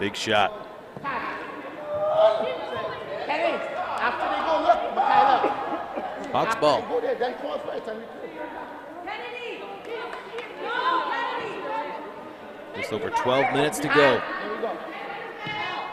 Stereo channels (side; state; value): both; identical; correlation 1.00